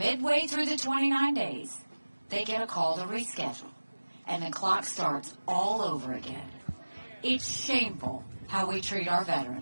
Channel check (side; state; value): both; inverted; correlation -1.00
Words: through the 29 days, they get a call to reschedule, and the clock starts all over again. It's shameful how we treat our